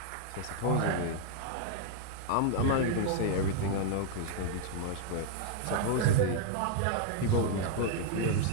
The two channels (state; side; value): different; both; correlation 0.00